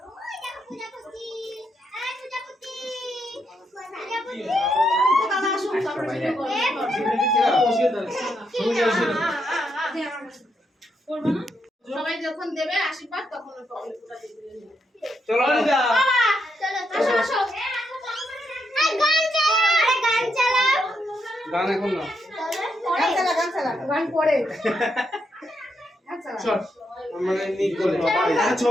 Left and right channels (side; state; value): both; normal; correlation 0.80